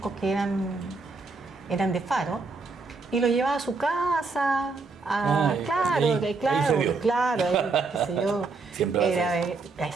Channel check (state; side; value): quieter; left; 4.0 dB